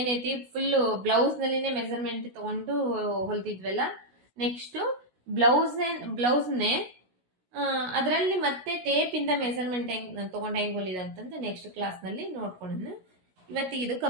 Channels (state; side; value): late; left; 16 ms